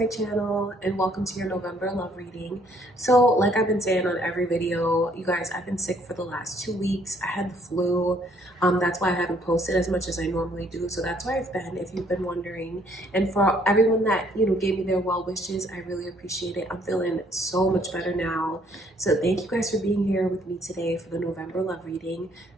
channel and welcome to your November love reading. So like I've been saying on every video, you guys, I've been sick for the last 2 weeks. I had the flu. That's why I haven't posted as much as I normally do. So that's where I've been, if you've been wondering. And for everyone that, gave me their well wishes, I really appreciate it. I'm feeling so much better now. So thank you guys for being here with me today for the November love reading.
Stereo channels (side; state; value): both; normal; correlation 0.64